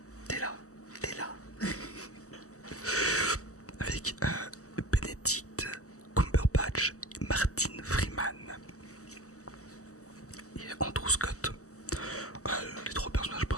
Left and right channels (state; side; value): late; right; 0.65 ms